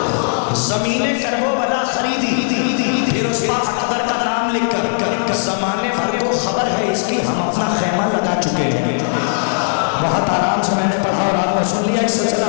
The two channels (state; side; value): silent; right; digital silence